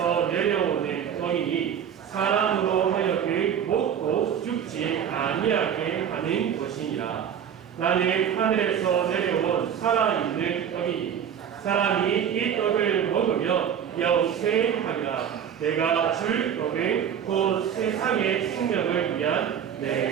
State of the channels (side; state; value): left; quieter; 8.6 dB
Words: 내려오는 떡이니 사람으로 하여금 먹고 죽지 아니하게 하는 것이니라. 나는 하늘에서 내려온 살아있는 떡이니 사람이 이 떡을 먹으면 영생하리라. 내가 줄 떡은 곧 세상의 생명을 위한 내